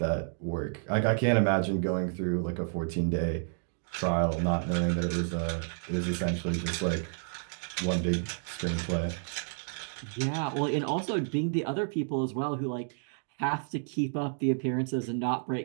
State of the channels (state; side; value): silent; left; digital silence